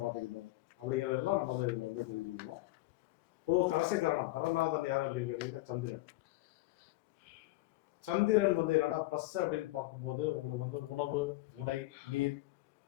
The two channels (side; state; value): right; quieter; 19.4 dB